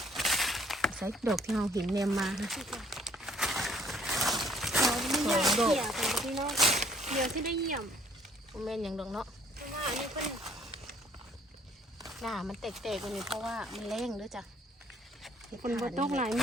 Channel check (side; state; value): both; normal; correlation 0.60